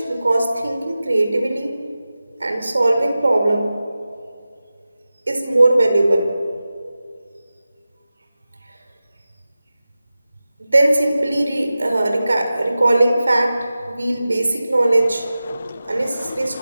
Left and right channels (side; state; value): both; inverted; correlation -0.95